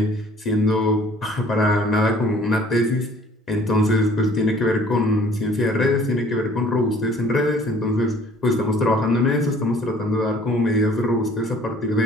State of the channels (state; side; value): normal; both; correlation 0.54